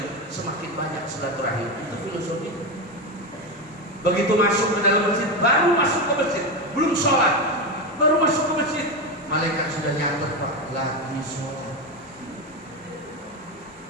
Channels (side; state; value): both; normal; correlation 0.14